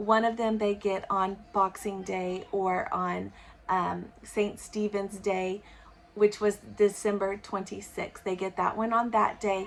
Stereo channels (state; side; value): identical; both; correlation 1.00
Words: of them they get on Boxing Day or on St. Stephen's Day, which was December 26th. They get that one on that